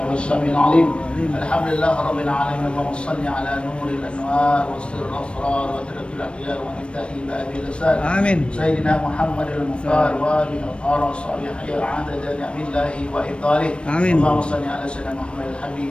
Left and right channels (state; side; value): late; right; 0.058 ms